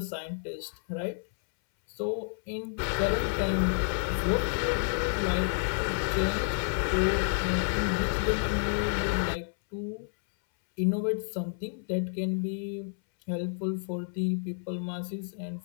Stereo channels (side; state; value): right; silent; 58 dB below the other